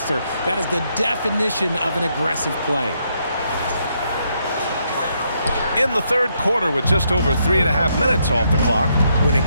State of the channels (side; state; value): both; inverted; correlation -0.76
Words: That is the definition of an aggressive play. In the third quarter with just over 3.5 minutes off the clock. When it